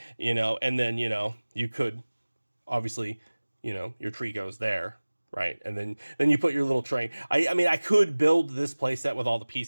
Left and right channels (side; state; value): both; inverted; correlation -1.00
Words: and then, you could obviously, your tree goes there. Right. And then you put your little train. I mean, I could build this playset with all the